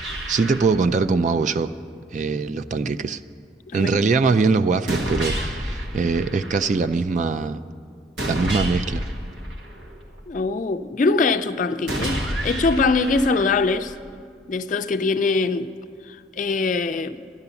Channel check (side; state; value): both; normal; correlation 0.55